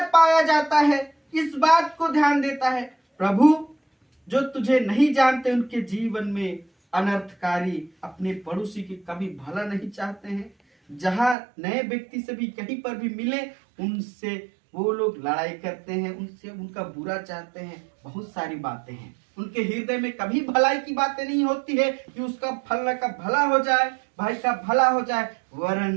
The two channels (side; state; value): left; drops out; at 11.4 s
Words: पाया जाता है। इस बात को ध्यान देता है प्रभु। जो तुझे नहीं जानते उनके जीवन में अनर्थकारी, अपने पड़ोसी के कभी भला नहीं चाहते हैं। जहां नए व्यक्ति से भी कहीं पर भी मिले उनसे वो लोग लड़ाई करते हैं, उनसे उनका बुरा चाहते हैं। बहुत सारी बातें हैं उनके हृदय में, कभी भलाई की बातें नहीं होती है कि उसका फलना का भला हो जाए, भाई का भला हो जाए,